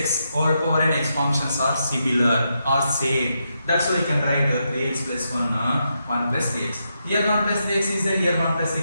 all power n x functions are similar or same. That's why you can write 3x plus 1 plus 3x. Here 1 plus 3x is there, here 1 plus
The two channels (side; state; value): both; inverted; correlation -0.83